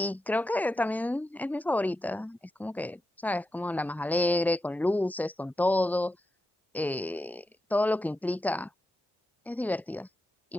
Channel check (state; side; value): normal; both; correlation 0.89